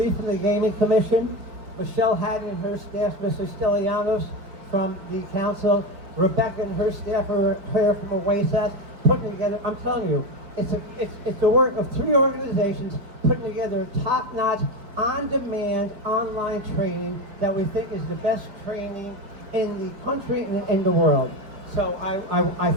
from the Gaming Commission, Michelle Haddon and her staff, Mr. Stelianos from the council, Rebecca and her staff are here from OASAS, putting together, I'm telling you, it's the work of 3 organizations putting together top-notch, on-demand, online training that we think is the best training in the country and in the world. So I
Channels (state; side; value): late; left; 5.2 ms